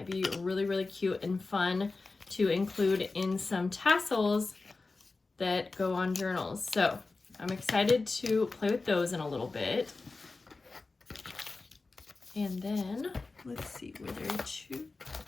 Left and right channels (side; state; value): right; quieter; 3.7 dB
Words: be really, really cute and fun to include in some tassels that go on journals. So I'm excited to play with those in a little bit. And then let's see, were there two?